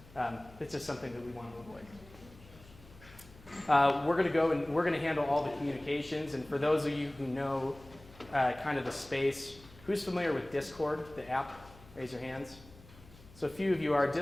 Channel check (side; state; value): left; noise; hum, 22 dB below the sound